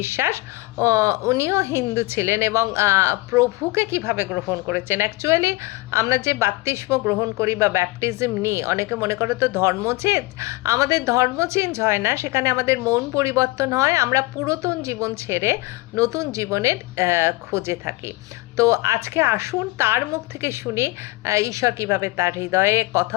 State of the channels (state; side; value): quieter; right; 21.4 dB